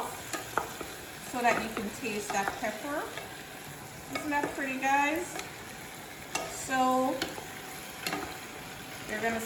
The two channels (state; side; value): identical; both; correlation 1.00